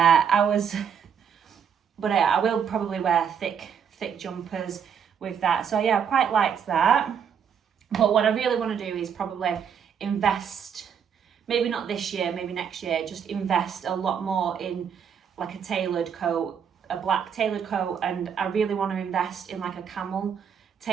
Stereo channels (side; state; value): left; quieter; 7.6 dB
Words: but yeah, I will probably wear thick jumpers with that. So yeah, I quite liked that. But what I really want to do is probably invest, maybe not this year, maybe next year, just invest a lot more in like a tailored coat, a black tailored coat, and I really want to invest in like a camel